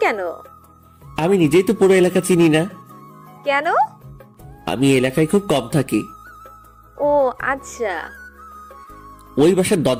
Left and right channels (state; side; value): identical; both; correlation 1.00